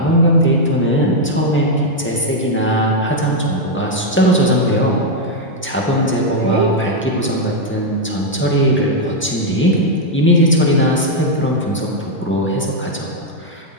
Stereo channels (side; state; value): both; normal; correlation 0.00